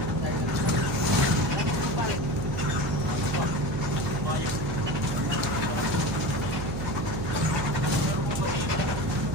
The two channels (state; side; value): noise; right; hum, 4 dB below the sound